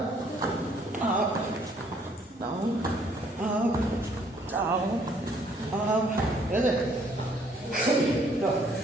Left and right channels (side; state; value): both; normal; correlation 0.64